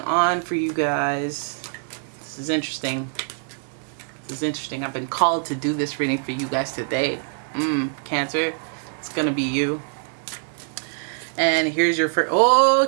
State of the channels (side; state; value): left; silent; digital silence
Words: for you guys. This is interesting. This is interesting. I've been called to do this reading for you guys today. Cancer, it's gonna be you. And here's your first. Oh,